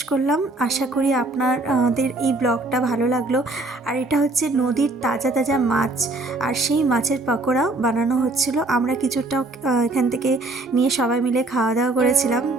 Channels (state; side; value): quieter; left; 3.0 dB